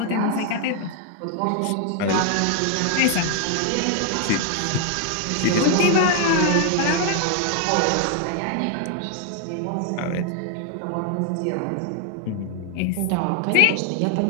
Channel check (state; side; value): different; both; correlation 0.00